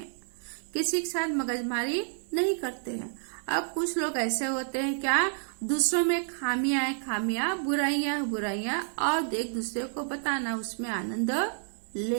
किसी के साथ मगजमारी नहीं करते हैं। अब कुछ लोग ऐसे होते हैं क्या, दूसरों में खामियां है खामियां, बुराइयां है बुराइयां, और एक दूसरे को बताना, उसमें आनंद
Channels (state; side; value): silent; left; 58 dB below the other